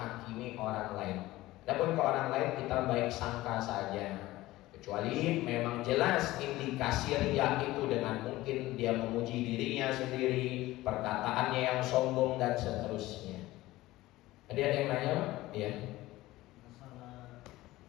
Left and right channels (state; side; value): quieter; right; 17.6 dB